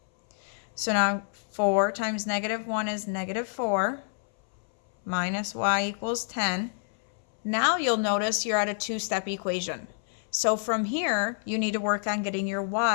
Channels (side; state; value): right; silent; 59 dB below the other